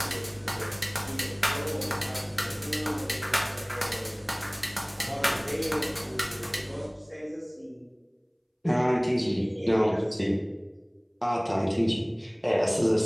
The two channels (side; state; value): both; identical; correlation 1.00